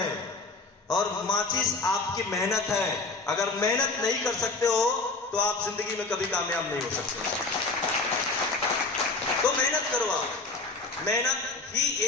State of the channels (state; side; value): quieter; right; 3.6 dB